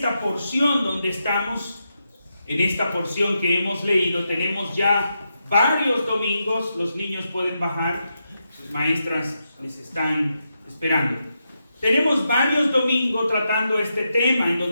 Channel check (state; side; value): inverted; both; correlation -0.85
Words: porción donde estamos, en esta porción que hemos leído, tenemos ya varios domingos. Los niños pueden bajar, sus maestras les están esperando. Tenemos varios domingos tratando este tema en